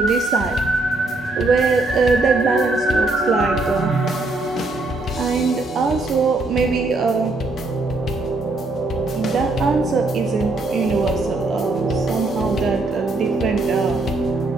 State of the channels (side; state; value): left; quieter; 3.1 dB